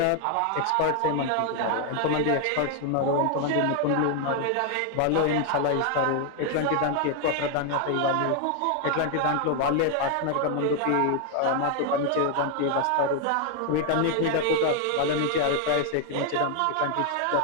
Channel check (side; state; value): both; different; correlation 0.00